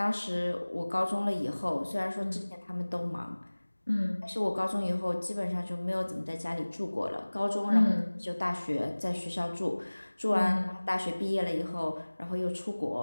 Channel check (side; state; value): both; inverted; correlation -1.00